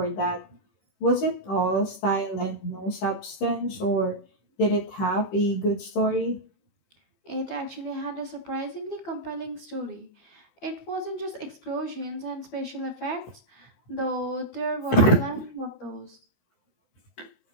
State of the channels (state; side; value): late; right; 15 ms